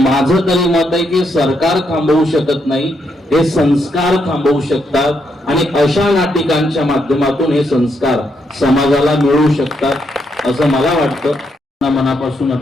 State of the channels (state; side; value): normal; both; correlation 0.78